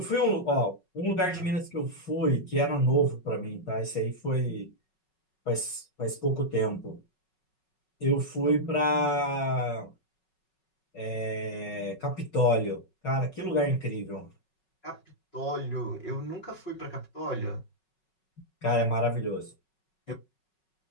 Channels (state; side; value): late; right; 5.4 ms